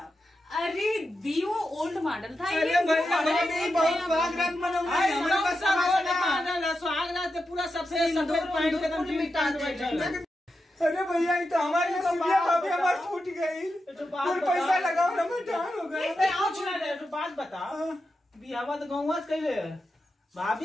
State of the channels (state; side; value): normal; both; correlation 0.89